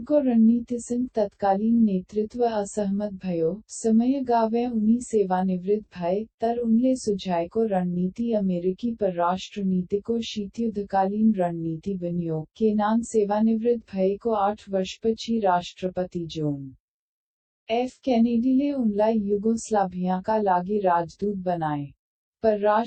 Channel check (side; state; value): both; identical; correlation 1.00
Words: रणनीतिसँग तत्कालीन नेतृत्व असहमत भयो। समय गावे उनी सेवानिवृत्त भए, तर उनले सुझाएको रणनीति अमेरिकी परराष्ट्र नीतिको शीतयुद्धकालीन रणनीति बन्यो। केनान सेवानिवृत्त भएको 8 वर्षपछि राष्ट्रपति जोन एफ केनेडीले उनलाई युगोस्लाभियाका लागि राजदूत बनाए।